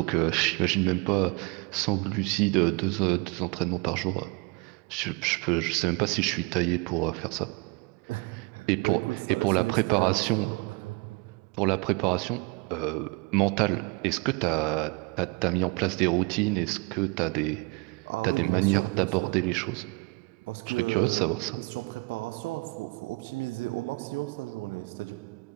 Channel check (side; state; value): left; quieter; 28.3 dB